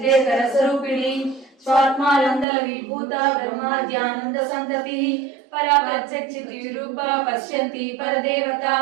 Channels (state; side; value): drops out; left; at 2.5 s